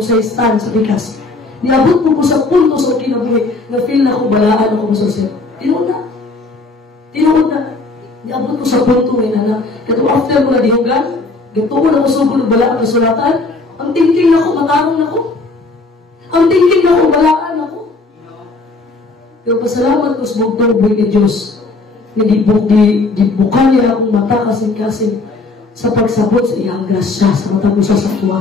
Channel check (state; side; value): quieter; right; 3.5 dB